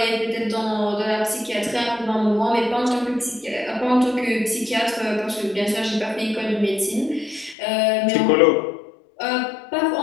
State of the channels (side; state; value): right; drops out; at 7.6 s